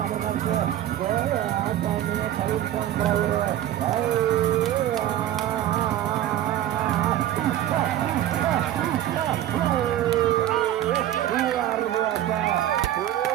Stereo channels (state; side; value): quieter; left; 12.4 dB